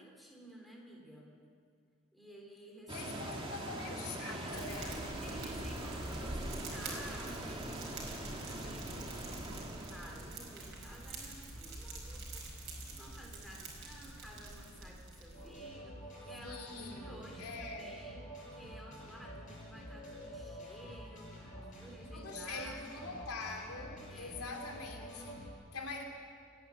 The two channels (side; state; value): both; normal; correlation 0.38